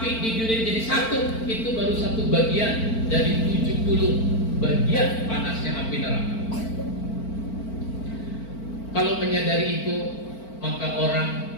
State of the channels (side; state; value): right; late; 4.5 ms